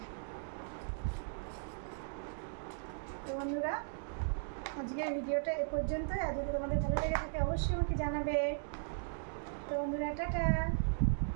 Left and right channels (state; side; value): silent; left; digital silence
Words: তো বন্ধুরা, আজকের ভিডিওটা এ পর্যন্তই। আর যদি তোমাদের ভালো লেগে থাকে অবশ্যই আমাকে জানাবে। তো বন্ধুরা, টাটা।